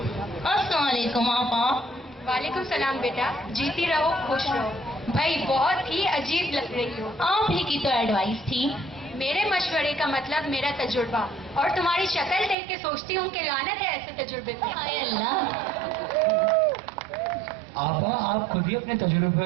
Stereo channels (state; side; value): drops out; left; at 12.6 s